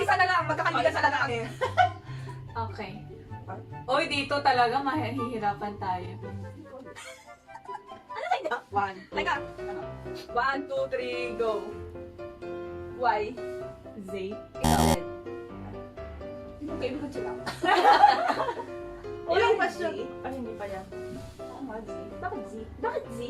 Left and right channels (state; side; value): identical; both; correlation 1.00